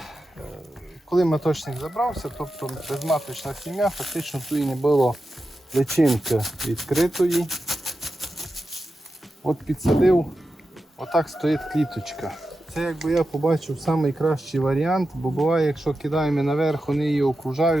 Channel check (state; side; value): normal; both; correlation 0.91